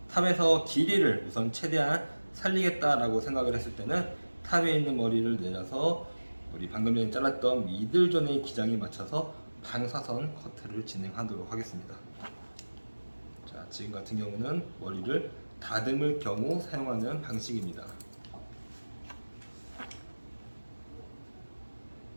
탑에서 길이를 우선 최대한 살리겠다라고 생각을 했을 때는 탑에 있는 머리를 내려서 우리 방금 전에 잘랐던 미들존의 기장에 맞춰서 방사선 커트를 진행하도록 하겠습니다. 자, 지금 같은 경우는 머리를 다듬을 경우 사용하는 방식입니다.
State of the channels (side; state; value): both; inverted; correlation -1.00